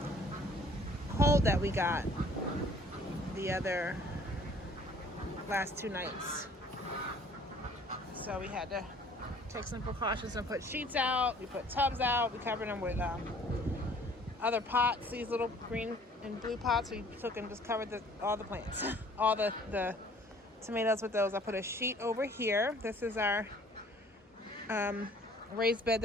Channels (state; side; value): normal; both; correlation 0.55